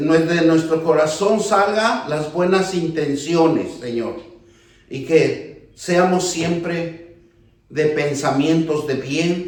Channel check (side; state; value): both; identical; correlation 1.00